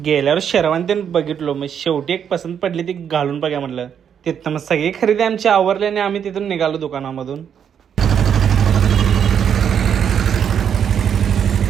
गेल्यावर शेरवानी बघितलो, मग शेवटी एक पसंत पडली, ती घालून बघा म्हटलं. तिथं मग सगळी खरेदी आमची आवरली आणि आम्ही तिथून निघालो दुकानामधून.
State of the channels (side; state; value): left; quieter; 8.2 dB